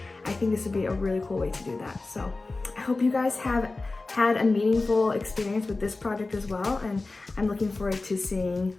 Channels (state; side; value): quieter; right; 3.4 dB